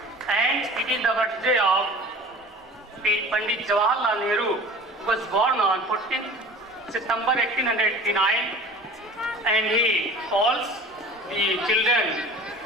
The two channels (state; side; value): normal; both; correlation 0.41